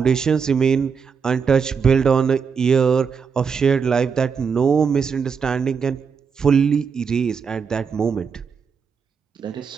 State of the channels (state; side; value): quieter; left; 6.1 dB